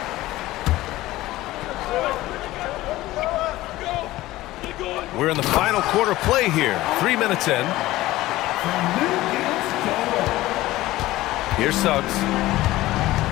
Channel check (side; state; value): right; quieter; 17.0 dB